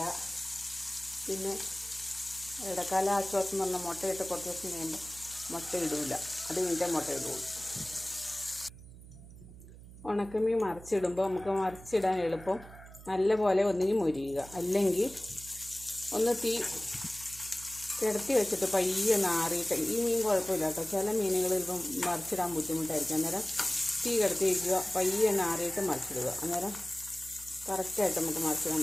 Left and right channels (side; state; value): right; noise; hum, 17 dB below the sound